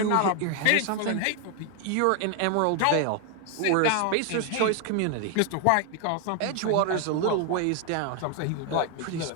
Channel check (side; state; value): both; different; correlation 0.00